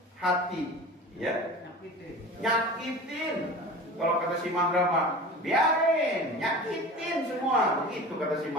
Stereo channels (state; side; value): normal; both; correlation 0.36